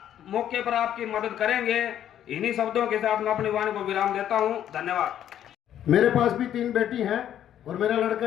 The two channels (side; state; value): right; quieter; 10.6 dB